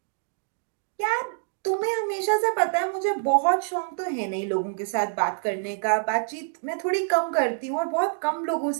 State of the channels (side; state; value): left; silent; digital silence